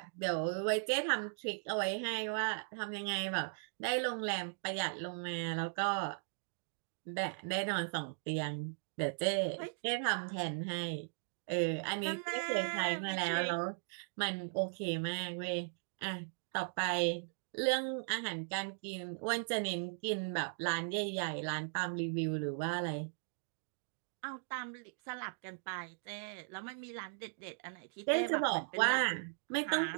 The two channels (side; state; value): left; silent; digital silence